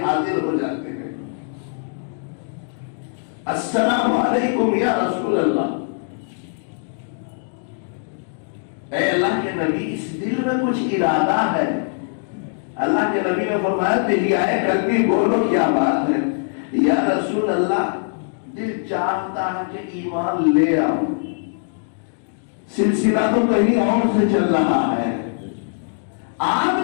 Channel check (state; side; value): silent; right; digital silence